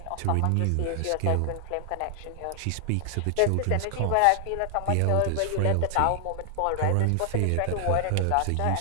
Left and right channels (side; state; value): both; different; correlation 0.00